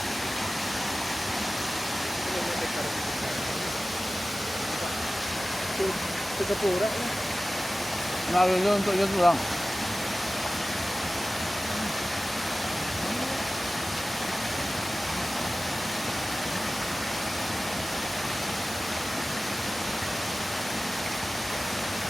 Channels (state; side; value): normal; both; correlation 0.96